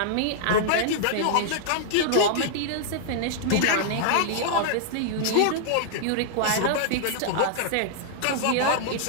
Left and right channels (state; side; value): different; both; correlation -0.01